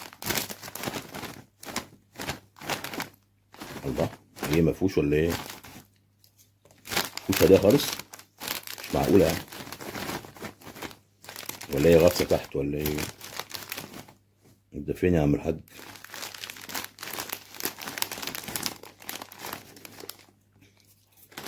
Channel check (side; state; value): both; identical; correlation 1.00